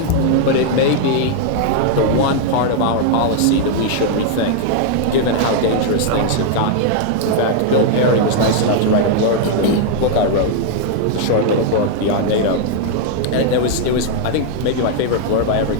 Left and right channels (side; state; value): both; different; correlation 0.00